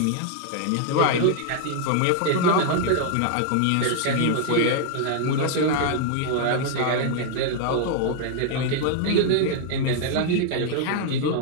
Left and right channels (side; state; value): both; different; correlation 0.00